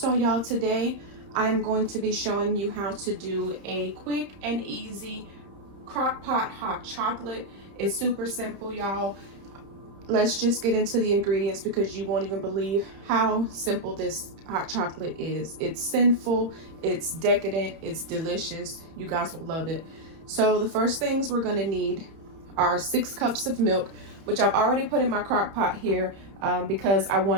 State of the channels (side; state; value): left; late; 30 ms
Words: y'all, today I am going to be showing you how to do a quick and easy Crockpot hot chocolate. It's super simple, y'all. Let's just get into the ingredients because you won't even believe how simple this hot chocolate is. It's sinful, it's decadent, it's delicious. You guys will love it. So the first things we're gonna need are 6 cups of milk, which I've already put in my crock pot here because I